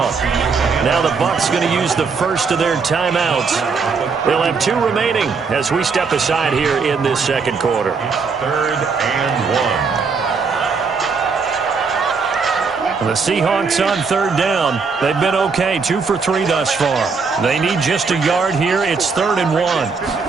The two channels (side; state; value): left; quieter; 5.0 dB